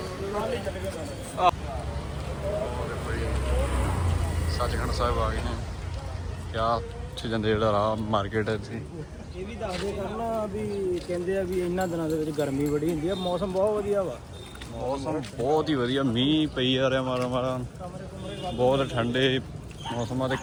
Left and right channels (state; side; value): identical; both; correlation 1.00